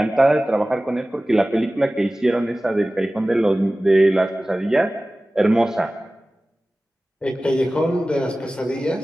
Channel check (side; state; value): both; normal; correlation 0.97